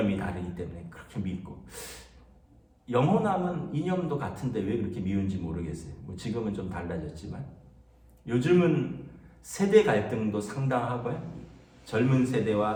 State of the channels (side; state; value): both; identical; correlation 1.00